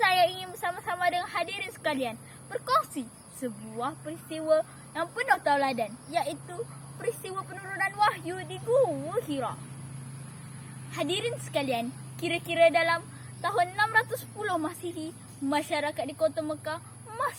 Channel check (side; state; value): both; identical; correlation 1.00